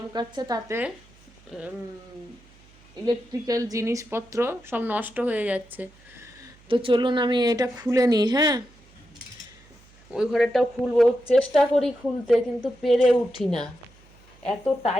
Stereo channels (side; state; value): right; noise; hum, 27 dB below the sound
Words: তাতে ইলেকট্রিক্যাল জিনিসপত্র সব নষ্ট হয়ে যাচ্ছে। তো চলুন আমি এটা খুলে নিই। হ্যাঁ, ওই ঘরেরটাও খুলবো, চেষ্টা করি খুলতে, কিন্তু পেরে উঠি না, এত